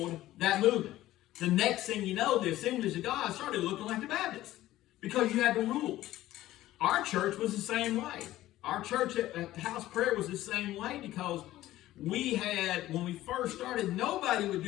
that movement. The next thing you know, the Assemblies of God started looking like the Baptists because you had the rules. Our church was the same way. Our church at House Prayer was the same way because we had, when we first started, nobody would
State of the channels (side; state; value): right; quieter; 15.2 dB